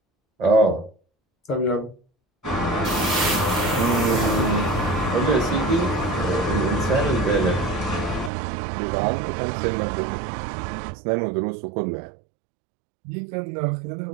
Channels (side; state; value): left; drops out; at 8.3 s